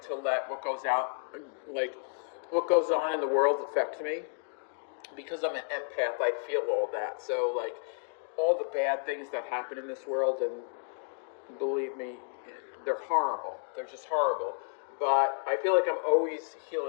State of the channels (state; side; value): silent; right; digital silence